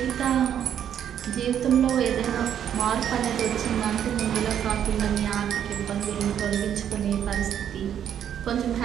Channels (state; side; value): quieter; left; 9.5 dB